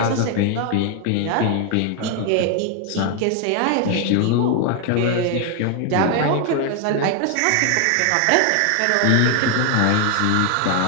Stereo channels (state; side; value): different; both; correlation 0.00